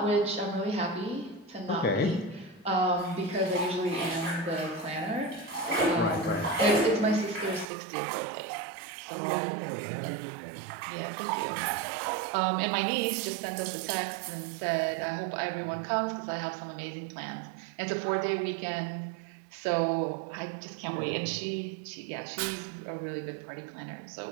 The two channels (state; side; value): drops out; left; at 7.7 s